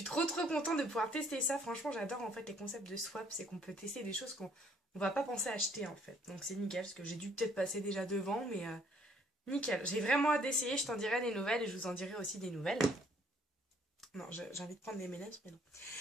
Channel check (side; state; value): both; normal; correlation 0.63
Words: trop contente de pouvoir tester ça. Franchement, j'adore en fait les concepts de swap. C'est qu'on peut tester des choses qu'on va pas penser à acheter en fait. Donc c'est nickel, parce que j'ai dû peut-être passer déjà devant, mais... nickel, j'ai vraiment hâte d'essayer, je t'en dirai des nouvelles et je vous en dirai aussi des nouvelles. Non, j'ai envie de prendre des M&M's, mais non.